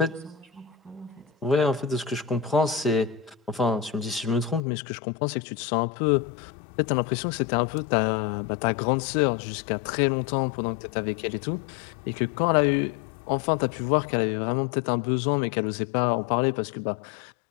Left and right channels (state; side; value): drops out; right; at 4.6 s